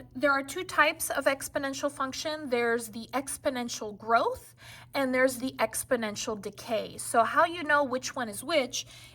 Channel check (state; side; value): identical; both; correlation 1.00